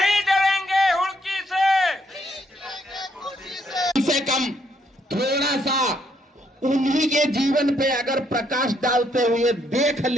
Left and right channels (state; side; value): normal; both; correlation 0.72